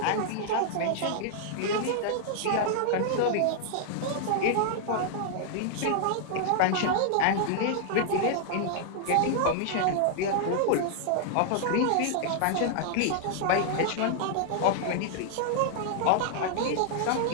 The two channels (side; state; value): both; different; correlation -0.01